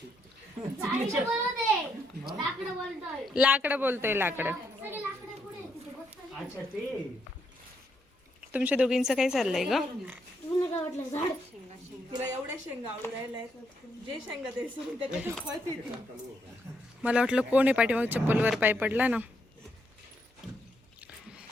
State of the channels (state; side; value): normal; both; correlation 0.77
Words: लाकडं बोलतोय लाकडं. तुमच्या दोघींचं काय चाललंय ग? तिला एवढ्या शेंगा आवडू राहिल्या, जे शेंगा ते मला वाटलं कोण आहे पाठीमाग चप्पलवर पाय पडला ना.